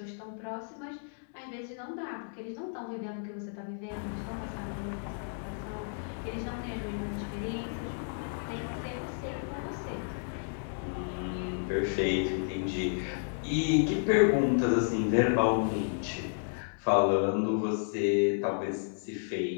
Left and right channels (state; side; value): silent; right; digital silence